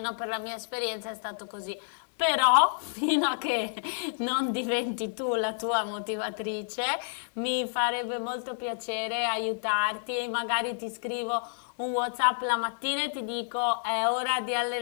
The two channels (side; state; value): right; silent; digital silence